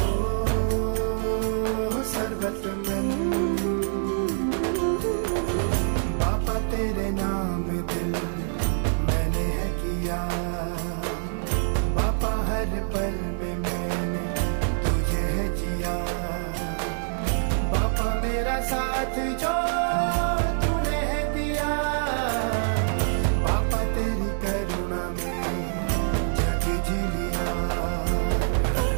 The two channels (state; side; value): silent; left; digital silence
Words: ओ सर्वतमन. बापा तेरे नाम दिल मैंने है किया, बापा हर पल में मैंने तुझे है जिया, बापा मेरा साथ जो तूने है दिया, बापा तेरी करुणा में जग जी लिया.